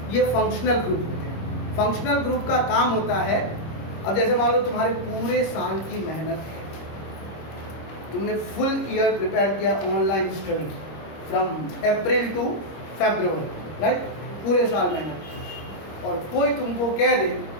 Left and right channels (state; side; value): late; right; 25 ms